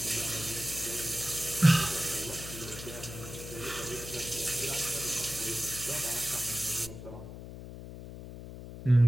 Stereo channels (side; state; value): left; noise; hum, 11 dB below the sound